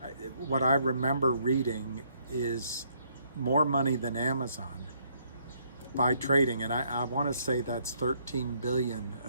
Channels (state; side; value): inverted; both; correlation -0.69